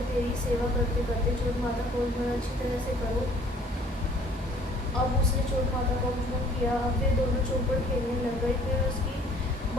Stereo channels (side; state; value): both; normal; correlation 0.56